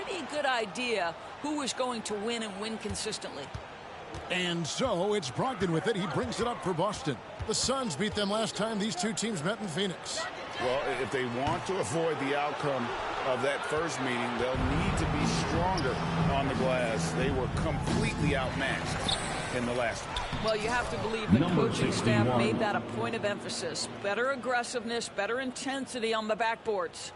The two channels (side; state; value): both; identical; correlation 1.00